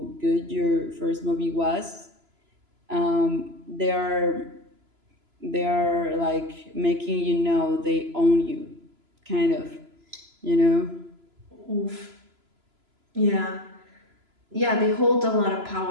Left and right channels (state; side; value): late; left; 3.0 ms